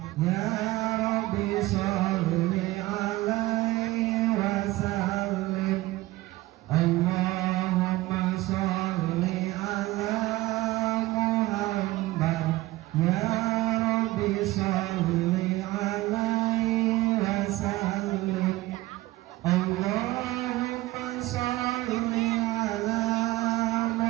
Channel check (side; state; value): left; quieter; 18.3 dB